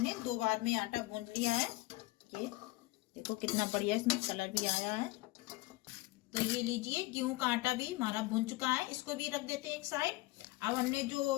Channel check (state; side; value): quieter; right; 20.8 dB